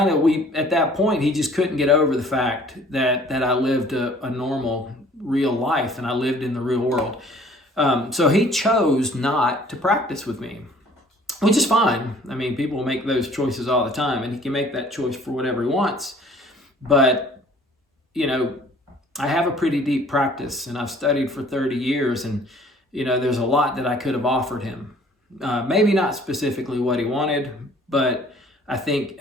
at that point, he just couldn't get over the fact that I lived a normal, real life, and I lived in the real world. So he chose not to practice with me, which is fine. I mean, people make those choices all the time, and he can make that choice for whatever he wants. But, I have a pretty deep practice, and I've studied for 30 years, and, there's a lot that I could have offered him. Maybe not specifically what he wanted, but I think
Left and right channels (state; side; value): normal; both; correlation 0.54